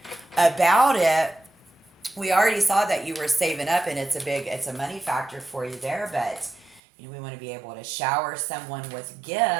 about it. We already saw that you were saving up, and it's a money factor for you there, but we want to be able to shower someone with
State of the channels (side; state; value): left; drops out; at 6.8 s